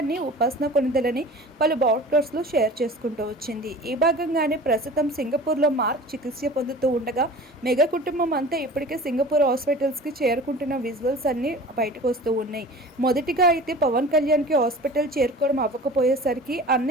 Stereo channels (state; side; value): normal; both; correlation 0.40